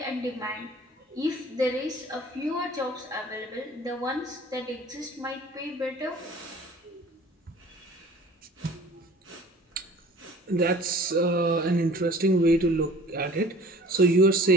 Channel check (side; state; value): both; normal; correlation 0.48